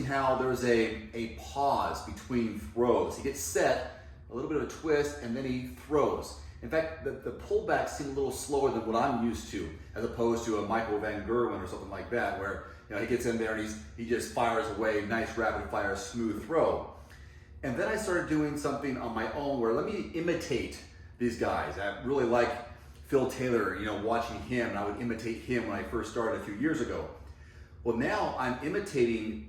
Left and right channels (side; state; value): both; identical; correlation 1.00